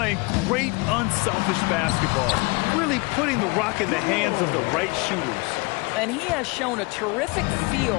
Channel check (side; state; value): right; quieter; 27.0 dB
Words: great, unselfish basketball, really putting the rock in the hands of the right shooters. And he has shown a terrific